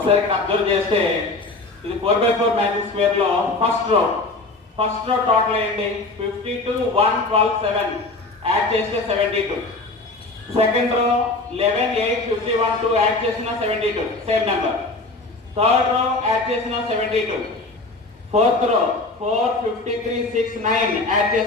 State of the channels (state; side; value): quieter; right; 3.2 dB